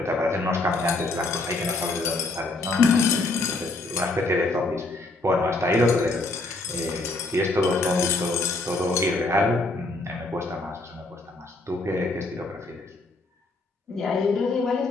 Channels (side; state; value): right; quieter; 3.1 dB